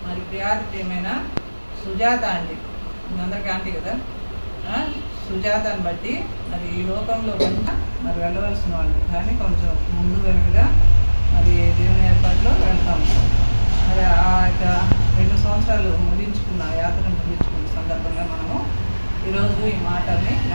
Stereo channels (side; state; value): both; inverted; correlation -1.00